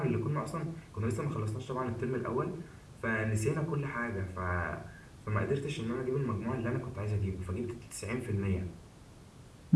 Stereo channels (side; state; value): both; identical; correlation 1.00